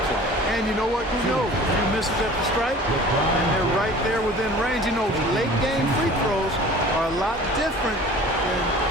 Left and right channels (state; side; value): normal; both; correlation 0.44